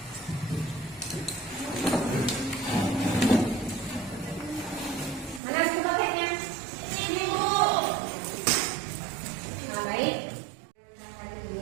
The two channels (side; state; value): left; drops out; at 5.4 s